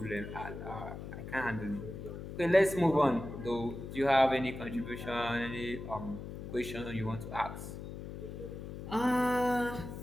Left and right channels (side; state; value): left; noise; hum, 9 dB below the sound